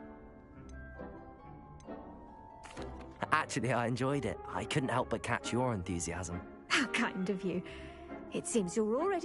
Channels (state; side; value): identical; both; correlation 1.00